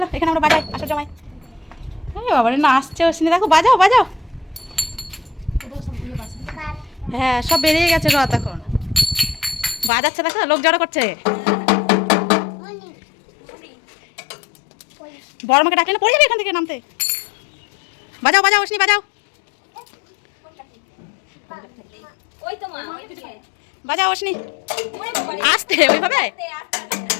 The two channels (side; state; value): right; drops out; at 9.9 s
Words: এখানে আমরা বাজাই, আসো জমাই। বাবা রে না আসছে অশ্নি, দেখো বাজাও বাজাও। হ্যাঁ সব বেরিয়ে গেছে রথ এখন, বাজাচ্ছে দেখো, লোক জড়ো করছে। বড় মাকে ডাকলে না পড়ে যাবে এখান থেকে নামতে। বাজাও বাজাও অশ্নি বাজাও, ওই তো মা, বাজাও অশ্নি। আসতে ওইভাবে